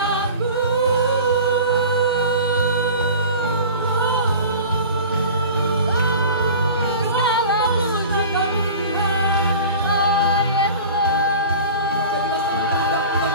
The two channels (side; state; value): both; inverted; correlation -0.38